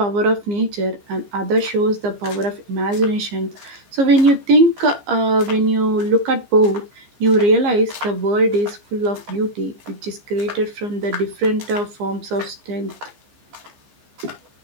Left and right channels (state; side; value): late; left; 15 ms